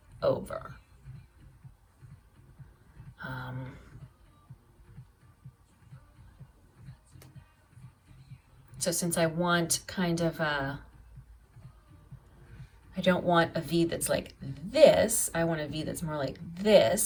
over. So since I want kind of I don't want a V that's like this, I want a V that's more like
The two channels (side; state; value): both; identical; correlation 1.00